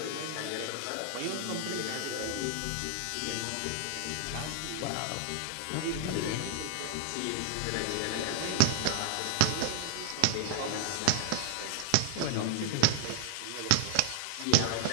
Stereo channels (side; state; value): both; different; correlation 0.00